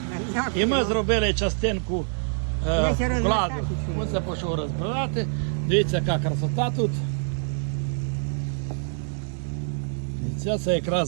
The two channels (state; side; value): silent; left; 61 dB below the other